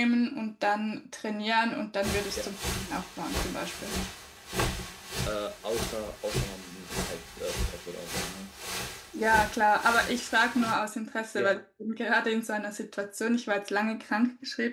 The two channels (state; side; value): identical; both; correlation 1.00